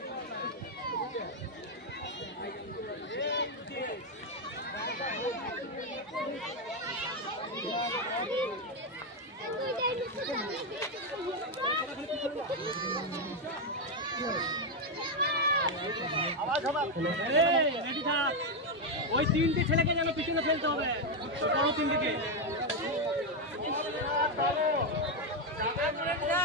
ওই 3টে ছেলেকে যেন পিছনে ফেলতে হবে, বড় 3টিকে।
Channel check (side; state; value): both; normal; correlation 0.05